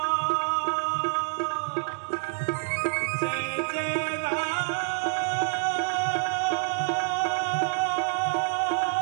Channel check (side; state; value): left; silent; 57 dB below the other